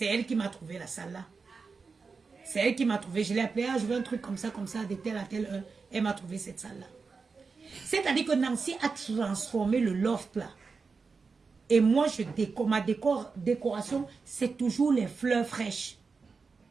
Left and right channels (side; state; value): left; quieter; 4.7 dB